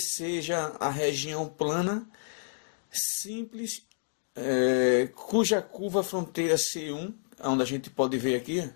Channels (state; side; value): silent; right; digital silence